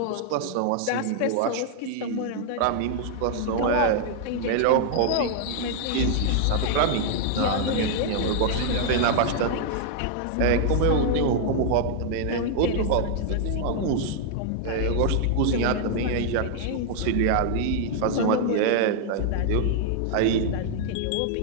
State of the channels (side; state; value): both; different; correlation -0.01